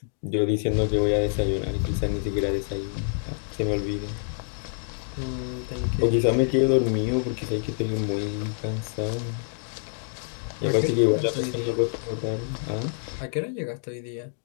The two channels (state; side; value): silent; right; digital silence